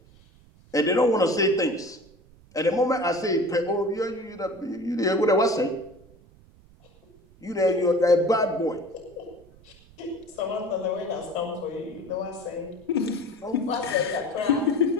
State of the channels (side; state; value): right; noise; rumble, 26 dB below the sound